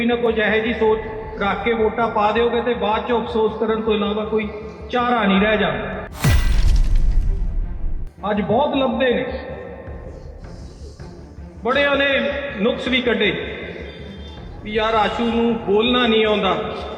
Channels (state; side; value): identical; both; correlation 1.00